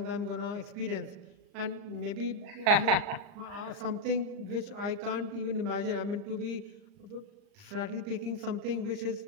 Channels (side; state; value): left; late; 39 ms